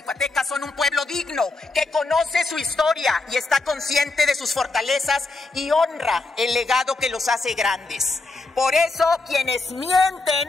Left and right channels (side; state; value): right; quieter; 3.5 dB